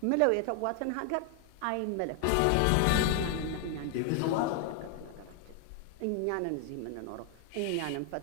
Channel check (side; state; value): both; different; correlation 0.00